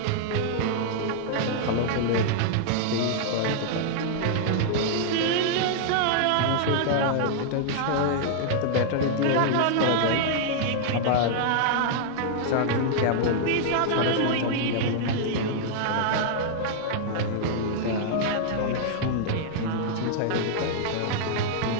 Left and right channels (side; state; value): both; different; correlation -0.01